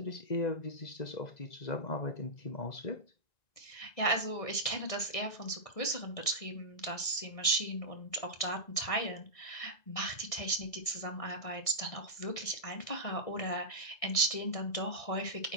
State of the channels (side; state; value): right; late; 1.6 ms